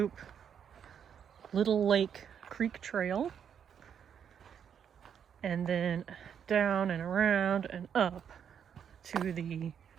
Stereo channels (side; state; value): left; quieter; 8.1 dB